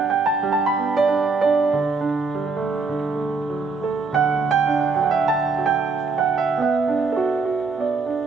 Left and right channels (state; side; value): quieter; left; 4.3 dB